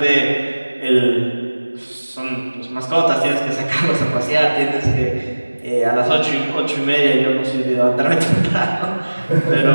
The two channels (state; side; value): inverted; both; correlation -1.00